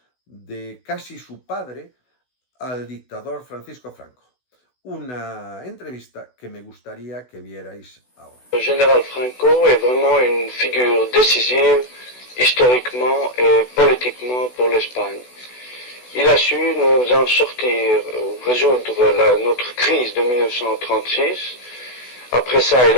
de casi su padre al dictador Francisco Franco. Una entrevista que me gustaría que vierais ahora. Le général Franco est vraiment une figure décisive historiquement et politiquement pour l'Espagne. Il a su nous en sortir, résoudre notre crise de 1936. Après ça, il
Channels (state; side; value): late; right; 16 ms